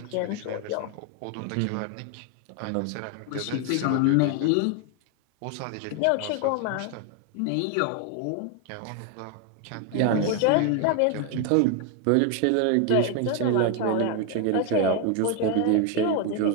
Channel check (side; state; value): both; different; correlation 0.01